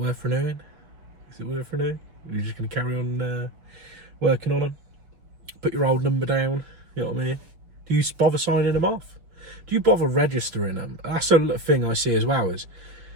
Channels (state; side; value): late; left; 5.6 ms